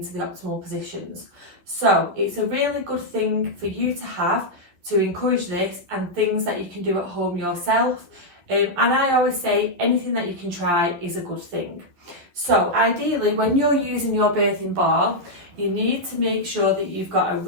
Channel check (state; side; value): late; left; 11 ms